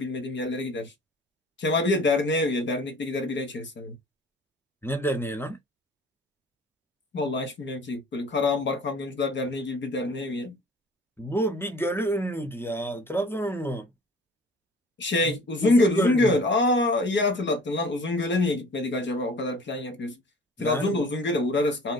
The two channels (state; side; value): normal; both; correlation 0.48